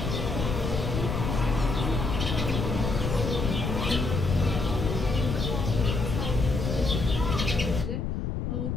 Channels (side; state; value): left; noise; rumble, 2 dB below the sound